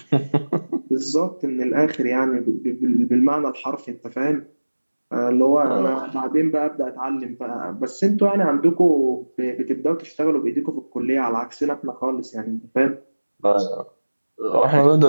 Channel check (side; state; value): both; inverted; correlation -1.00